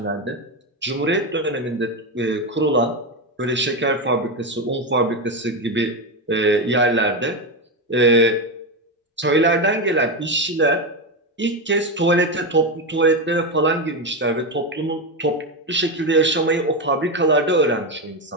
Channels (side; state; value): both; normal; correlation 0.12